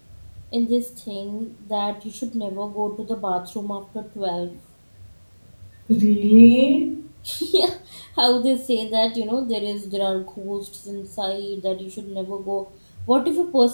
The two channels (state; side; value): inverted; both; correlation -1.00